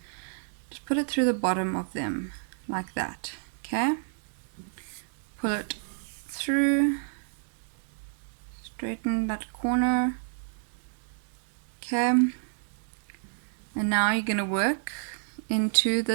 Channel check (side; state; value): left; silent; digital silence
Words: just put it through the bottom of them like that. Okay, pull it through, straighten that corner. Okay, and now you're going to work into